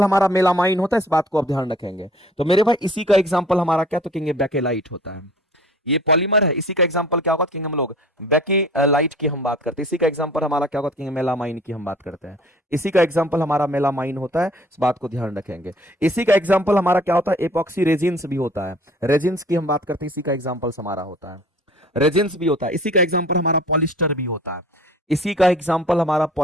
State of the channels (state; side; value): normal; both; correlation 0.50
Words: हमारा मेलामाइन होता है, इस बात को आप ध्यान रखेंगे। तो मेरे भाई इसी का एग्जांपल हमारा क्या? तो कहेंगे बेकेलाइट होता है। ये पॉलीमर है, इसी का एग्जांपल क्या होगा? कहेंगे हम लोग बेकेलाइट की हम बात करते हैं। इसी का एग्जांपल हमारा क्या होगा? कहेंगे मेलामाइन की हम बात करते हैं। इसी का एग्जांपल हमारा मेलामाइन होता है, इस बात को ध्यान रखेंगे। इसी का एग्जांपल हमारा क्या होता है? एपॉक्सी रेजिन्स भी होता है। रेजिन्स की हम बात करते हैं, इसी का एग्जांपल हमारा होता है। रेजिन्स भी होता है। इसी का एग्जांपल हमारा पॉलिस्टर भी होता है। इसी का एग्जांपल हमारा